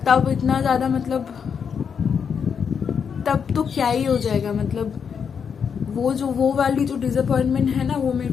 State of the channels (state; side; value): quieter; right; 6.8 dB